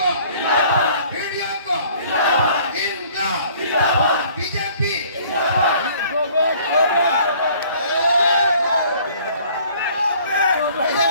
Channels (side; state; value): both; inverted; correlation -0.55